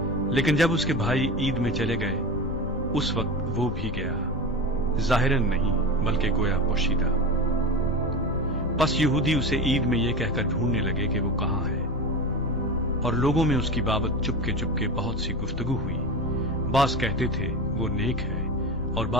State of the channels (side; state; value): left; noise; rumble, 11 dB below the sound